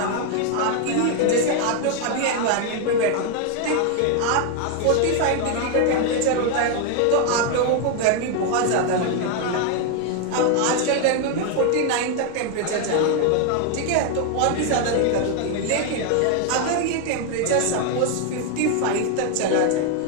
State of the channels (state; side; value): different; both; correlation 0.01